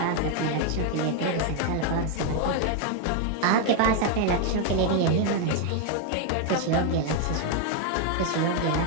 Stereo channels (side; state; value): both; different; correlation 0.01